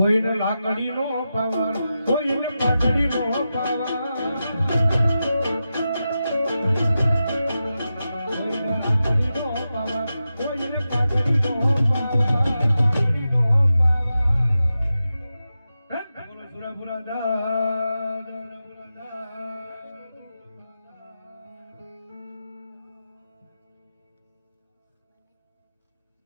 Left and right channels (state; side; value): inverted; both; correlation -0.91